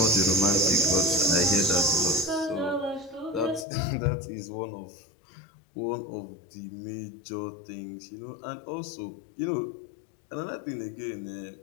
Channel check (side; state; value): right; drops out; at 3.7 s